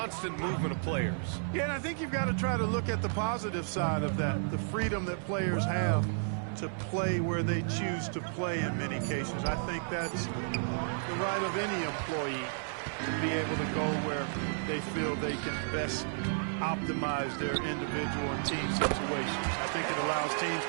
movement of players. Yeah, and I think you've got to try to look at the positive side of that, the freedom that players have to play where they choose to play in many cases. I think that's the right of any employee to be able to go where they feel they can best optimize their individual and team situations. I think it allows teams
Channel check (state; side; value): silent; left; 56 dB below the other